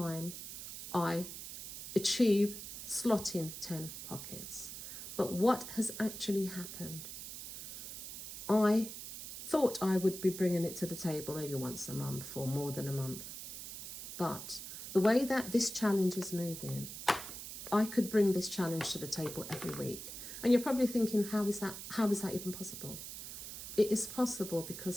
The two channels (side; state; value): right; noise; hiss, 9 dB below the sound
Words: I achieve slotting 10 pockets. But what has actually happened? I thought I would be bringing it to the table maybe once a month or more than a month. But the way that this challenge is moving, I could bring this challenge to the table every week. And you're probably thinking, how is that even possible? It is possible because